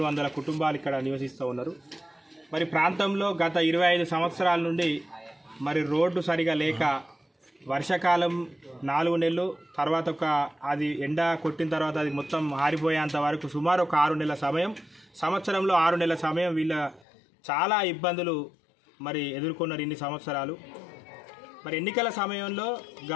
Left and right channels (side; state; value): right; drops out; at 17.1 s